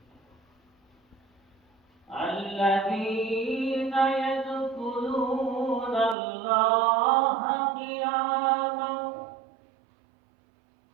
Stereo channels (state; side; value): drops out; left; at 6.2 s